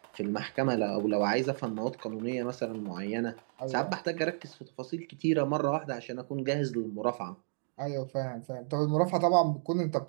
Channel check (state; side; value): silent; left; digital silence